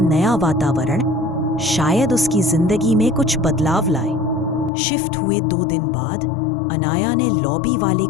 वातावरण शायद उसकी जिंदगी में कुछ बदलाव लाए। शिफ्ट हुए 2 दिन बाद अनाया ने लॉबी वाले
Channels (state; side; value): drops out; right; at 4.7 s